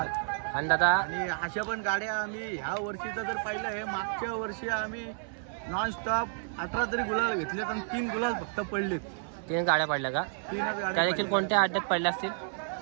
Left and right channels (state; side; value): silent; left; 57 dB below the other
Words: आणि दादा आणि अशा पण गाड्या आम्ही ह्या वर्षीचं जर पाहिलं आहे, मागच्या वर्षी आम्ही नॉनस्टॉप 18 तरी गुलाल घेतलेत आणि 3 गुलाल फक्त पडलेत. 3 गाड्या पडल्या का? 3च त्या गाड्या देखील कोणत्या अड्ड्यात पडल्या असतील?